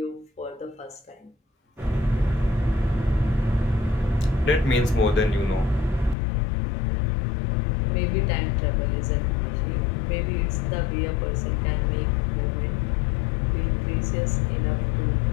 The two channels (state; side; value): drops out; right; at 6.2 s